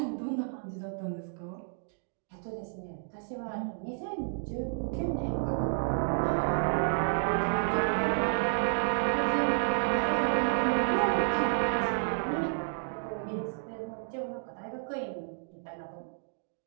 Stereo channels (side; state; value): left; silent; digital silence